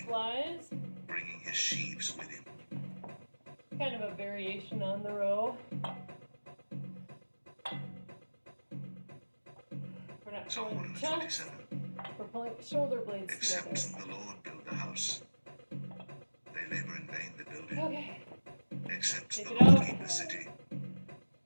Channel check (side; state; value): both; inverted; correlation -1.00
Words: flies. bringing his sheaves with him. Kind of a variation on the row. We're not Psalm pulling chunks. 127. We're pulling shoulder blades Except together. the Lord build the house, they labor in vain that build it. Okay. Except Take the it Lord out. keep the city,